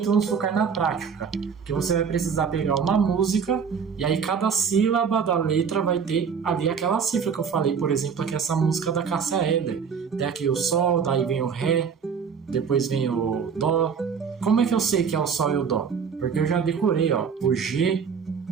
vamos focar na prática, que você vai precisar pegar uma música e aí cada sílaba da letra vai ter ali aquela cifra que eu falei, por exemplo, aqui essa música da Cássia Eller. Tem aqui o Sol, daí vem o Ré, depois vem o Dó. Como é que eu sei que é o Sol e o Dó? Porque eu já decorei, ó, o G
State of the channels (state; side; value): quieter; left; 6.5 dB